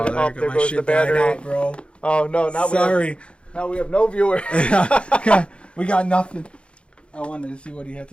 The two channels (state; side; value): late; right; 0.058 ms